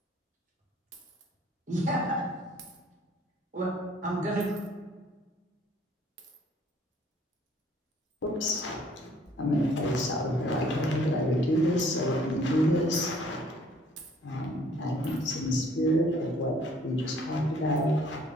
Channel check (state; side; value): normal; both; correlation 0.59